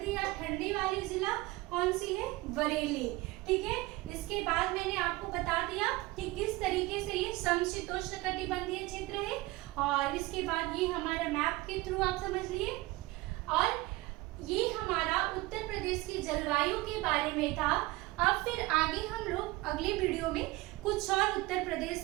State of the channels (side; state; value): left; quieter; 20.5 dB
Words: या ठंडी वाली जिला कौन सी है? बरेली, ठीक है। इसके बाद मैंने आपको बता दिया कि किस तरीके से ये समशीतोष्ण कटिबंधीय क्षेत्र है, और इसके बाद ये हमारा मैप के थ्रू आप समझ लिए। और ये हमारा उत्तर प्रदेश की जलवायु के बारे में था। अब फिर आगे हम लोग अगले वीडियो में कुछ और उत्तर प्रदेश